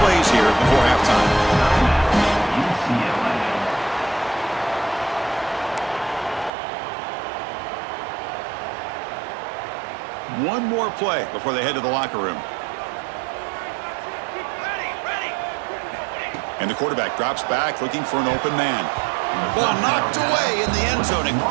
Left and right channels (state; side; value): drops out; left; at 6.5 s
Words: plays here before halftime. One more play before they head to the locker room. And the quarterback drops back looking for an open man. Ball knocked away in the end zone. A